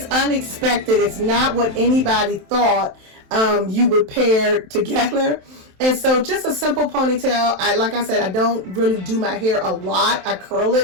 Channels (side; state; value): left; late; 27 ms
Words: unexpected. It's not what anybody thought you would pair together. And so just a simple ponytail. Like I said, I don't really do my hair a lot. I curl